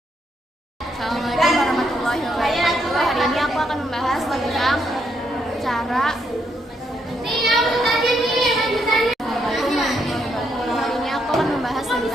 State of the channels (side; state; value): both; normal; correlation 0.76